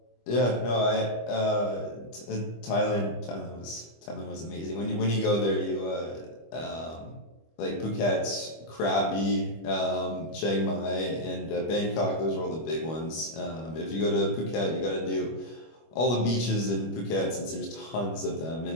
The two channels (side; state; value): right; late; 25 ms